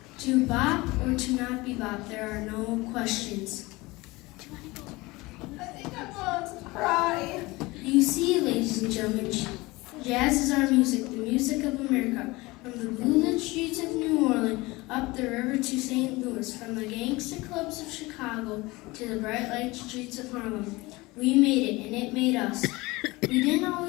To bop or to not be bop, there are no questions. I think I'm going to cry. You see, ladies and gentlemen, jazz is our music, the music of America. From the blue-lit streets of New Orleans, up the river to St. Louis, from the gangster clubs of Chicago to the bright light streets of Harlem. We made it, and it made us. We didn't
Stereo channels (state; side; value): quieter; right; 22.0 dB